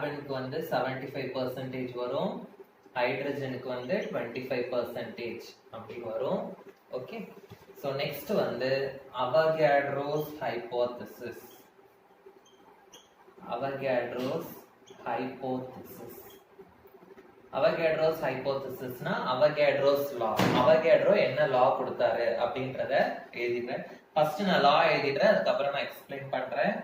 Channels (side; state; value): both; identical; correlation 1.00